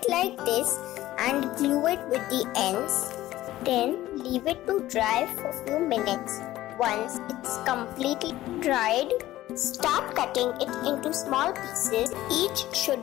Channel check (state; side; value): quieter; right; 15.4 dB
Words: like this and glue it with the ends. Then leave it to dry for a few minutes. Once it's completely dried, start cutting it into small pieces. Each should